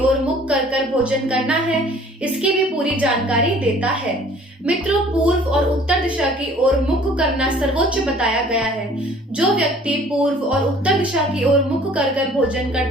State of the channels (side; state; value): both; normal; correlation 0.53